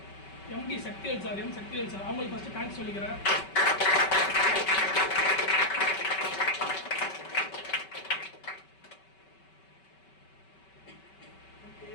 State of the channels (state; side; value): late; right; 5.2 ms